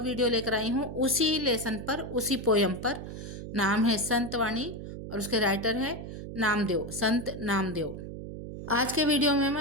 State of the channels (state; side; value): noise; right; hum, 9 dB below the sound